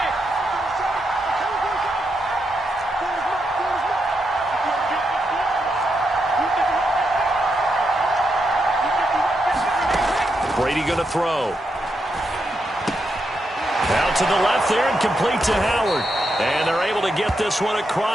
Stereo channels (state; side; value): normal; both; correlation 0.83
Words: Brady going to throw. Out to the left there and complete to Howard. And they're able to get this one